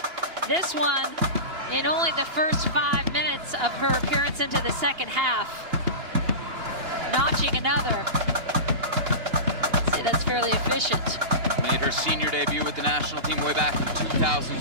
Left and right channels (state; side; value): late; left; 2.8 ms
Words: This one, in only the first 5 minutes of her appearance into the second half, notching another. I'd say that's fairly efficient. Made her senior debut with the national team way back in